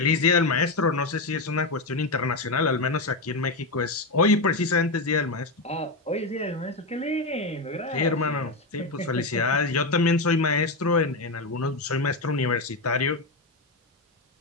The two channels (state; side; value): quieter; right; 3.2 dB